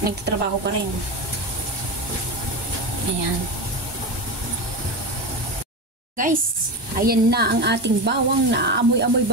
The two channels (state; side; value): late; left; 1.2 ms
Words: nagtatrabaho pa rin. Ayan. Guys, ayan na ang ating bawang. Naamoy-amoy